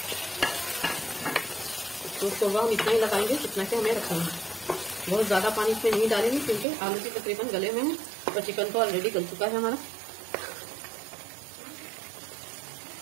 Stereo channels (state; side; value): drops out; left; at 6.7 s